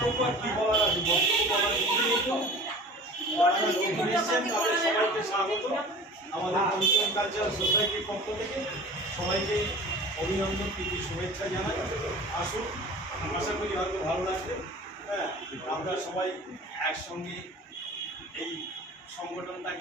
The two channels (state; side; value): normal; both; correlation 0.40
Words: আর কি বলার আছে, বক্তব্য বলার কিছুই নেই তো। যারা নতুন এসেছেন তাদের সবাইকে স্বাগত আমাদের কমিশন কালচারাল সোসাইটির পক্ষ থেকে। সবাইকে অভিনন্দন, প্রীতি, শুভেচ্ছা জানাই। আসুন, আশা করি হয়তো ভালো লাগবে। হ্যাঁ, আমরা সবাই একসঙ্গে এই